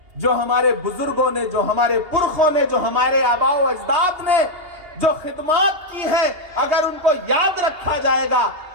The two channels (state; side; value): late; left; 2.8 ms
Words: जो हमारे बुजुर्गों ने, जो हमारे पुरखों ने, जो हमारे आबाओ अजदाद ने जो खिदमत की है, अगर उनको याद रखा जाएगा